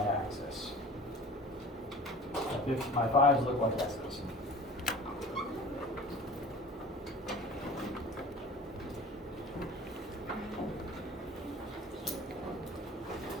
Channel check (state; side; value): normal; both; correlation 0.41